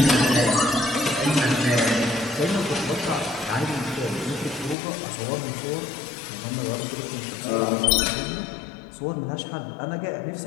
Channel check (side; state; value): right; drops out; at 4.8 s